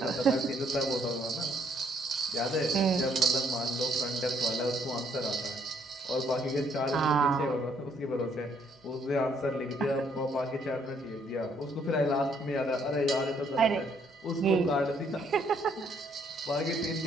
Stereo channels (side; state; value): both; normal; correlation 0.68